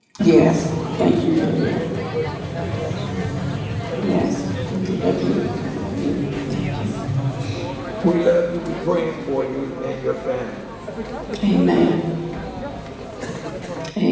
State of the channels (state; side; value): identical; both; correlation 1.00